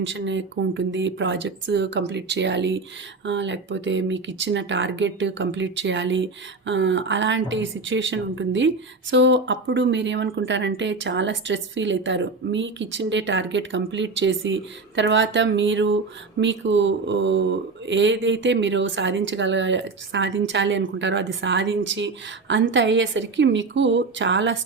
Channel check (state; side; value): quieter; left; 3.9 dB